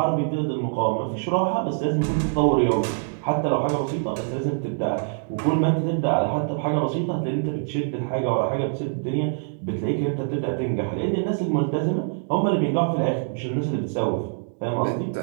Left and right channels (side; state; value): left; silent; digital silence